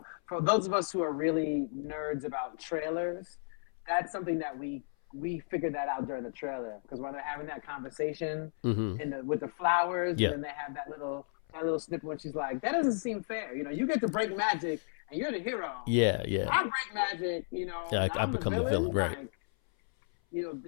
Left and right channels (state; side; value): silent; right; 55 dB below the other